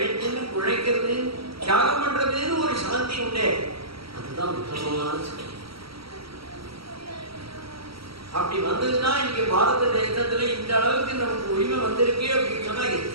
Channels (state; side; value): late; left; 0.75 ms